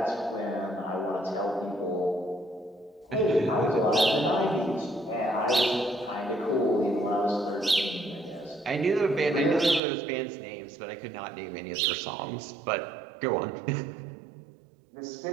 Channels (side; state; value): left; drops out; at 9.8 s